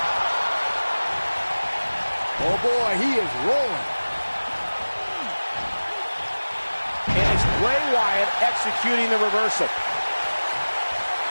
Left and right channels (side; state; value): both; inverted; correlation -1.00